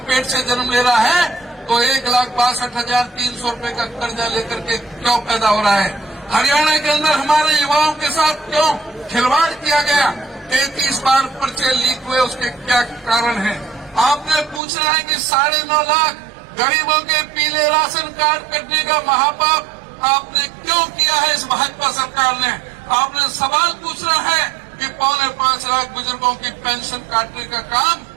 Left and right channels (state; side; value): drops out; left; at 14.6 s